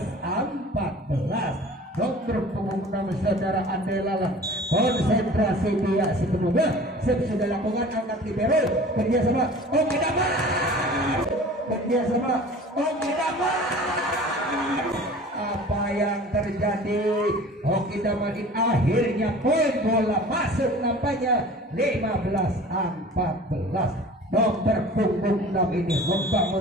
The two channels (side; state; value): both; normal; correlation 0.43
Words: Nomor punggung 6 saudara Andelalah konsentrasi dia sepenuhnya sudah lakukan angkat libero kerjasama Oki Damar. Kerjasama Oki Damar. Apa yang terjadi? Oki Damar akhirnya poin bola masuk nampaknya 15-14. Nomor punggung 6 ini